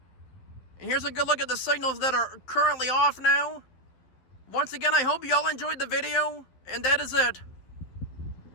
And here's a good look at the signals that are currently off now. Once again, I hope y'all enjoyed the video, and that is it.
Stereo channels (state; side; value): late; right; 12 ms